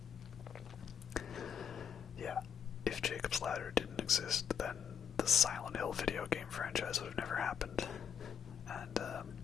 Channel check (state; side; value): quieter; right; 7.7 dB